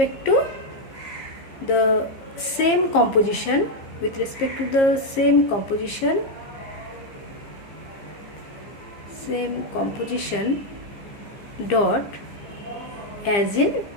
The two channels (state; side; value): late; right; 15 ms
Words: to the same composition, dot as in